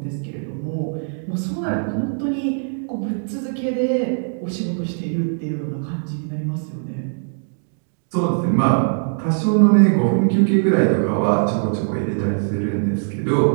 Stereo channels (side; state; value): left; silent; 65 dB below the other